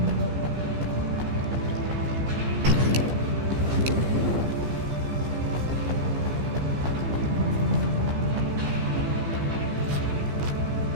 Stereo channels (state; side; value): late; left; 15 ms